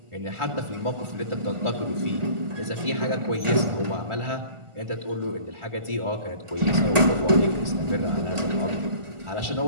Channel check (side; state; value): left; late; 1.4 ms